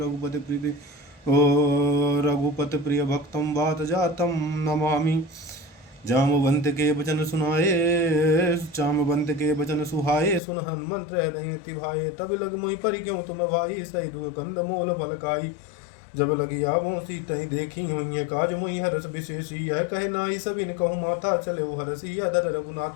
रघुपति प्रिय भक्तं वातजातं नमामि जामवंत के वचन सुहाए सुन हनुमंत हृदय भाए तब लग मोहि पर क्यों तुम भाई सही दु कंद मोल फलकाई जब लगी आवों सीतई देखी हुई काज मोहि हरस विशेषी यह कहे नाई सबिन कहूँ माता चले हरसी अधर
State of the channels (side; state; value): right; drops out; at 10.4 s